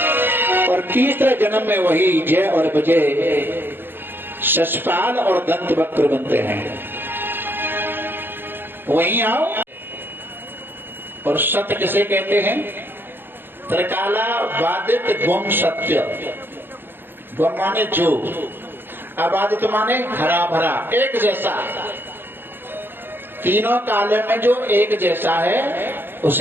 और तीसरे जन्म में वही जय और विजय शशपाल और दंत वक्र बनते हैं। वहीं आओ। और सत्य किसे कहते हैं? त्रिकाला बाधित गुम सत्य। गुम माने जो, अबाधित माने हरा भरा एक जैसा, तीनों काले में जो एक जैसा है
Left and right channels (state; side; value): late; left; 0.10 ms